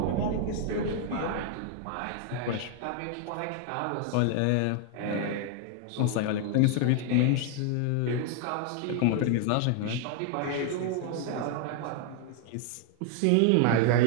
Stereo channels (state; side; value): different; both; correlation 0.00